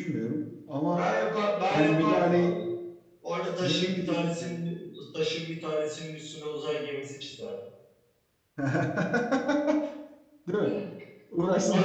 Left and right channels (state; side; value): identical; both; correlation 1.00